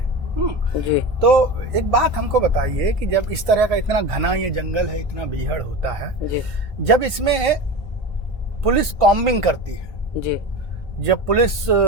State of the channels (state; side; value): normal; both; correlation 0.28